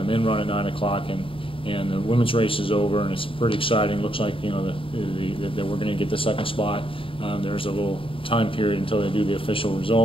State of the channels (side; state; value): right; late; 0.26 ms